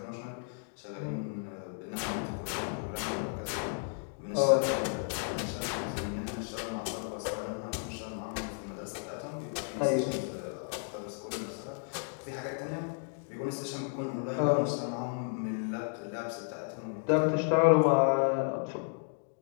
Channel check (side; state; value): right; silent; 56 dB below the other